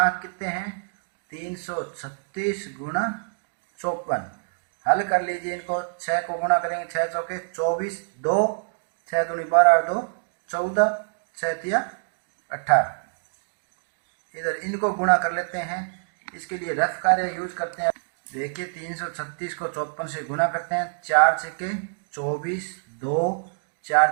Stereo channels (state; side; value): silent; left; digital silence